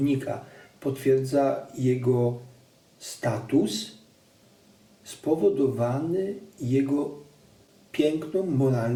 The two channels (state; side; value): identical; both; correlation 1.00